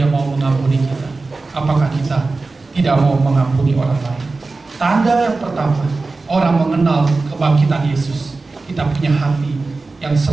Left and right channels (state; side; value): quieter; left; 3.7 dB